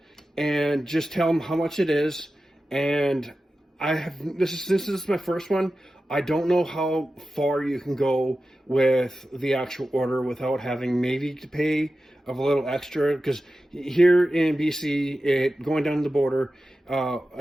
and just tell them how much it is. And this is my first one. I don't know how far you can go with the actual order without having maybe to pay a little extra, because here in BC, going down the border,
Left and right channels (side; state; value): both; normal; correlation 0.93